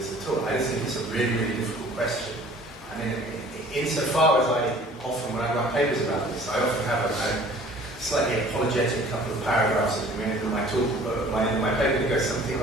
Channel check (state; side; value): normal; both; correlation 0.50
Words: at all. I just think it's a really, really difficult question. I mean, insofar as I often, when I write papers about this, I often have a kind of slightly apologetic couple of paragraphs at the end of my talk, my paper that goes something